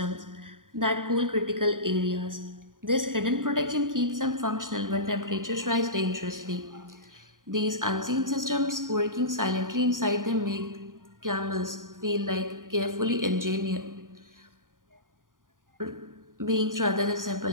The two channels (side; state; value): left; late; 0.89 ms